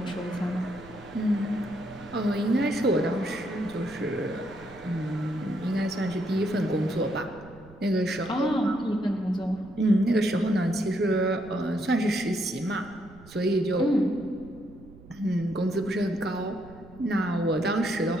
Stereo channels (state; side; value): noise; right; rumble, 20 dB below the sound